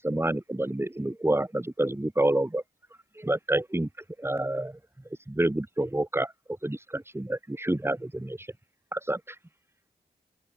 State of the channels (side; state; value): both; normal; correlation 0.89